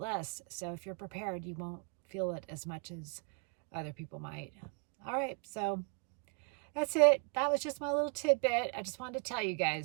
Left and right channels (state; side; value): quieter; left; 38.6 dB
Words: less. So if you're prepared, you won't feel it as much as other people might. All right, so that's it. That was just my little tidbit. I just wanted to tell you